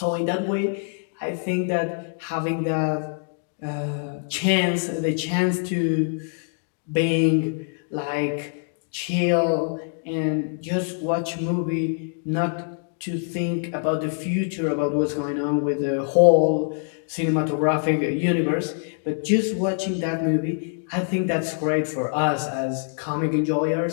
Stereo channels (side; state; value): right; silent; digital silence